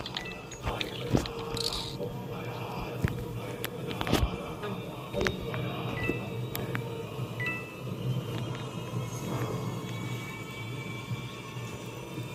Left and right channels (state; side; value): identical; both; correlation 1.00